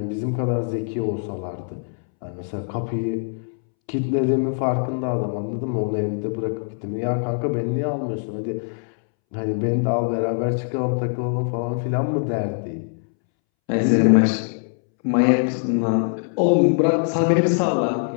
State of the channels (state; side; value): silent; right; 64 dB below the other